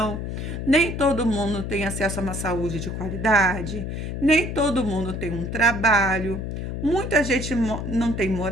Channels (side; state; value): left; noise; hum, 5 dB below the sound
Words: nem todo mundo tem acesso a uma saúde de qualidade, nem todo mundo tem um trabalho, muita gente não tem